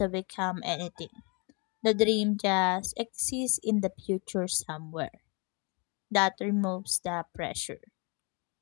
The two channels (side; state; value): right; quieter; 31.7 dB